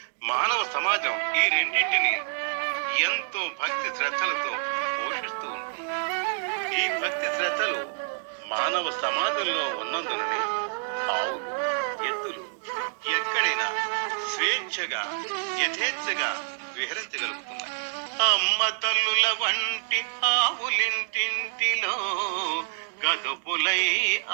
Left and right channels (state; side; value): silent; left; digital silence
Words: మానవ సమాజం ఈ రెండింటిని ఎంతో భక్తి శ్రద్ధలతో పోషిస్తూ ఉంటుంది. ఈ భక్తి శ్రద్ధలు మానవ సమాజంలో ఉన్నందుననే ఆవులు, ఎద్దులు ఎక్కడైనా స్వేచ్ఛగా యథేచ్ఛగా విహరించగలుగుతున్నాయి. అమ్మ తల్లుల వంటి ఆవులింటింటిలో గదుపులై